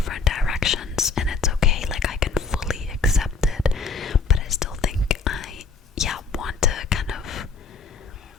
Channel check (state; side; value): quieter; right; 4.9 dB